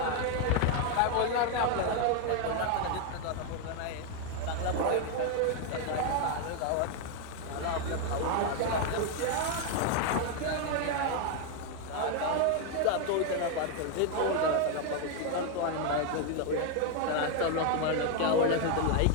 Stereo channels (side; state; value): both; different; correlation 0.01